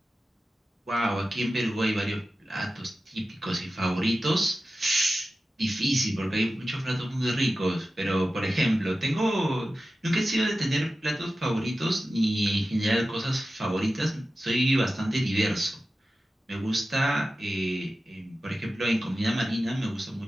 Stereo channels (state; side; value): normal; both; correlation 0.94